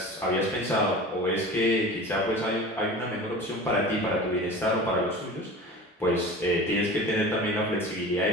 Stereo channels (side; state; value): both; normal; correlation 0.36